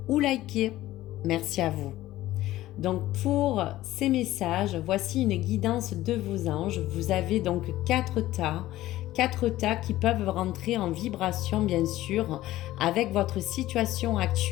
ou liker, merci à vous. Donc pour ces messages, voici une guidance de vos anges. Vous avez donc 4 tas qui peuvent rentrer en vibration bien sûr avec votre situation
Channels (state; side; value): quieter; right; 15.6 dB